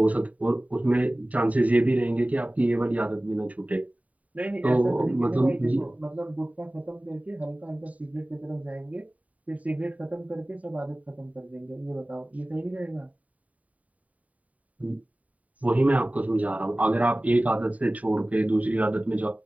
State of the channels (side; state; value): left; late; 0.070 ms